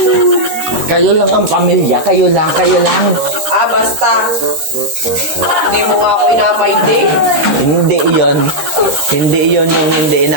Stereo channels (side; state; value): left; late; 13 ms